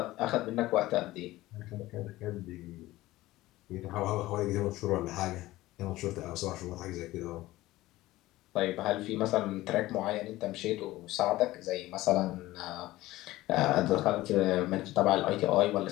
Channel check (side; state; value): right; quieter; 17.3 dB